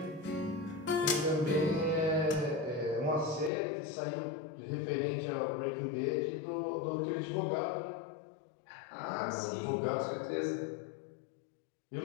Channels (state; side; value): drops out; right; at 3.5 s